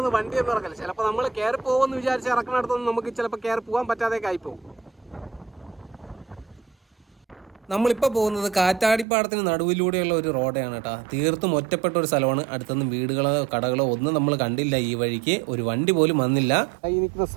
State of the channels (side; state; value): left; drops out; at 9.1 s